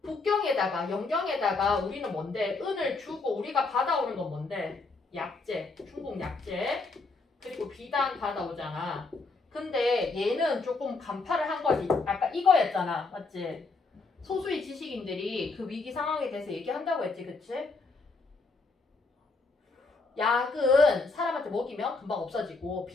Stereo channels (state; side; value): quieter; right; 3.8 dB